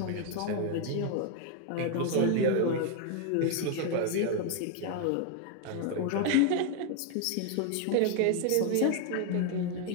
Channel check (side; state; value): both; different; correlation 0.01